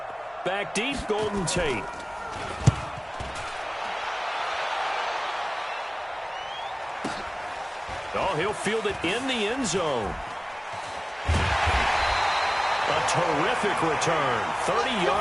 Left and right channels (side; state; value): both; identical; correlation 1.00